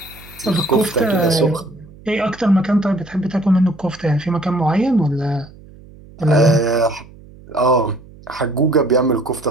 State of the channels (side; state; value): right; noise; hum, 22 dB below the sound